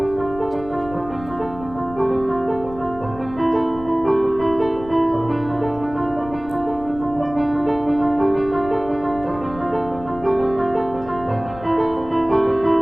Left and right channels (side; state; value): left; noise; rumble, 16 dB below the sound